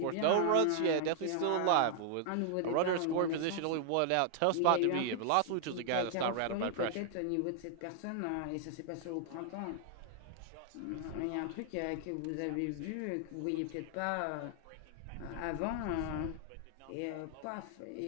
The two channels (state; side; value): different; both; correlation 0.00